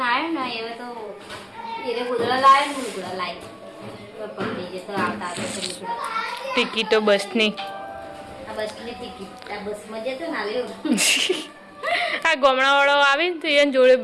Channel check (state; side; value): identical; both; correlation 1.00